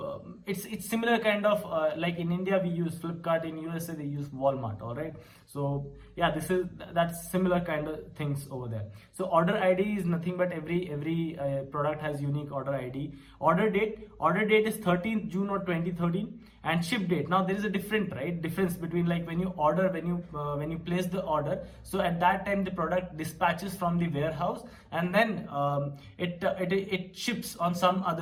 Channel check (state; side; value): identical; both; correlation 1.00